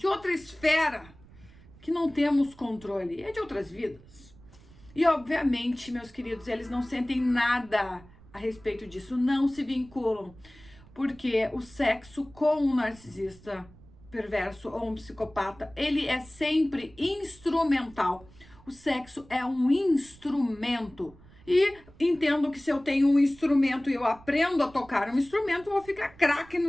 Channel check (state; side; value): noise; right; rumble, 23 dB below the sound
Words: esfera, que não temos controle, é de outras vidas. E obviamente, meus queridos, eles não sentem nada a respeito disso, não se vinculam, porque o sexo com um narcisista perverso ou um psicopata, ele é sempre instrumental. O sexo é um instrumento E entendo que se eu tenho um instrumento e eu aprendo a tocar um instrumento, eu vou ficar craque